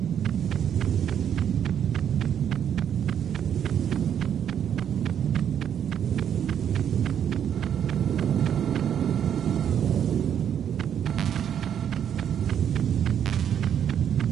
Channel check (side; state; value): left; quieter; 9.0 dB